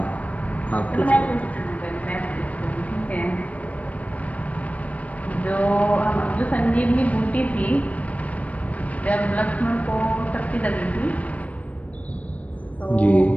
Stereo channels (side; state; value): right; late; 0.067 ms